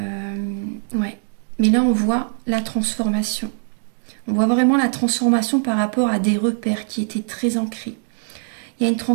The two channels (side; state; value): left; silent; digital silence